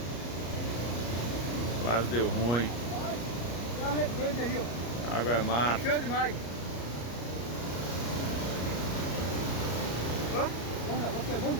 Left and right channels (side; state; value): right; late; 34 ms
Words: Quase deu ruim. Tá a represa aí, ó. A água é mata. Encheu demais. Ó, olha, vai quebrando